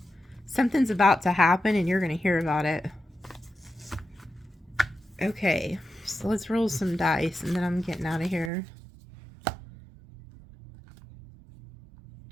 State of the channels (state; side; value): drops out; left; at 8.5 s